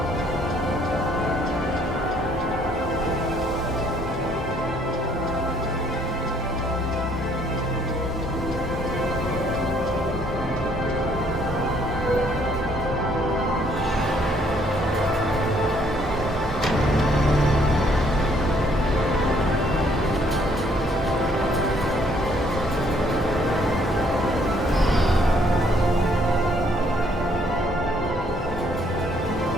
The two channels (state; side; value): normal; both; correlation 0.65